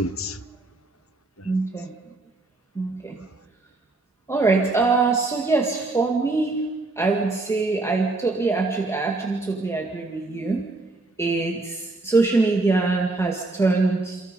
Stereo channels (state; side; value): quieter; left; 3.2 dB